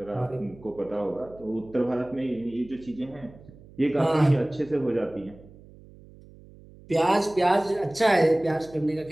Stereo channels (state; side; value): noise; right; hum, 22 dB below the sound